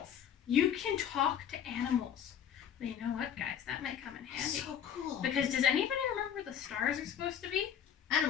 You can talk to animals. Well, you know what, guys? That might come in handy. So cool. Because does anybody remember where the stars are supposed to be?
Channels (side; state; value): right; quieter; 9.0 dB